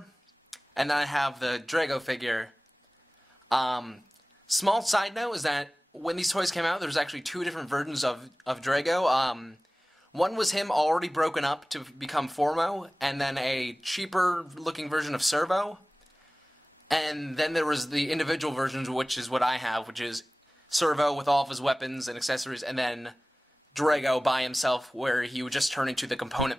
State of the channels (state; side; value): normal; both; correlation 0.98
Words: and then I have the Drago figure. Small side note is that when these toys came out, there's actually two different versions of Drago. One was him already broken up to become Formo, and then a cheaper looking version of Servo. And then there was the individual versions, which is what I have, which is Servo with all of his weapons and accessories, and then Drago by himself, where he would just turn into the component